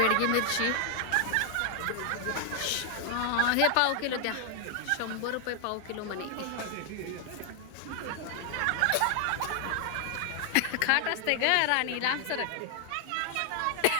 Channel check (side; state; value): both; different; correlation 0.00